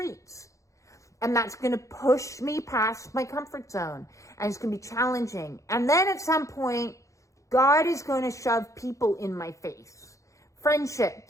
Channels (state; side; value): late; right; 0.15 ms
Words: And that's going to push me past my comfort zone. And it's going to be challenging. And then at some point, God is going to shove people in my face.